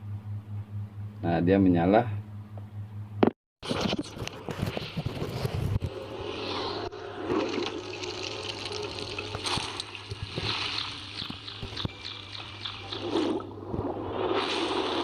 Nah, dia menyala.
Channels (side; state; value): both; identical; correlation 1.00